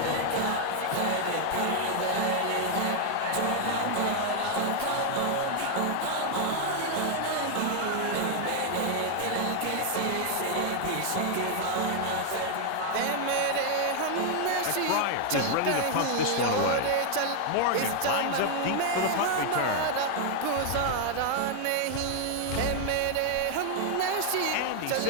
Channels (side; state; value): both; different; correlation 0.00